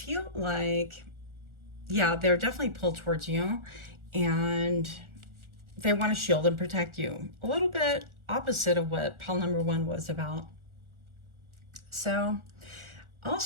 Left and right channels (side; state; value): left; late; 1.4 ms